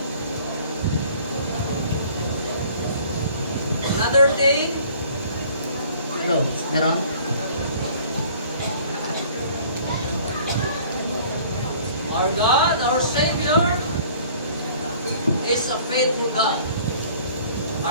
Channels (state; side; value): inverted; both; correlation -0.52